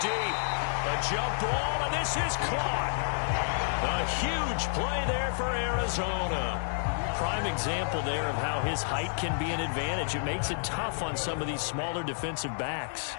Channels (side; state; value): right; silent; digital silence